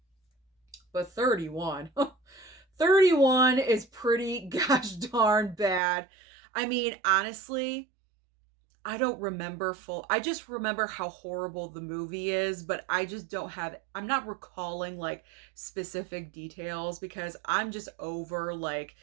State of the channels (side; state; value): left; drops out; at 5.8 s